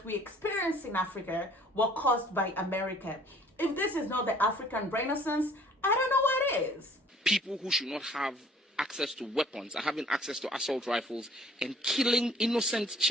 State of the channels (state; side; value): normal; both; correlation 0.55